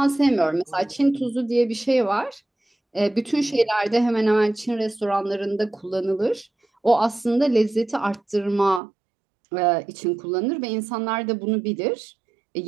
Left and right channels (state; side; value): drops out; left; at 8.8 s